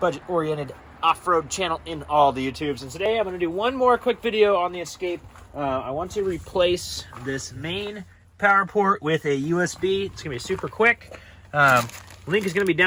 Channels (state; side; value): identical; both; correlation 1.00